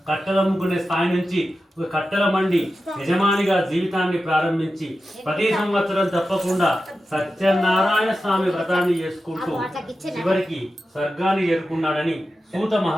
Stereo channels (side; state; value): both; normal; correlation 0.92